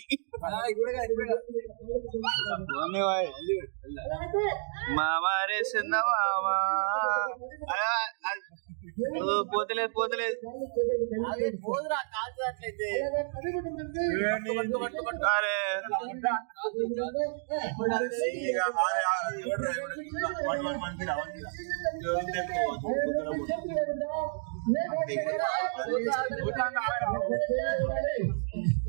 మామారే చిన్న మామా పోతలేదు పోతలేదు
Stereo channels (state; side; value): silent; left; digital silence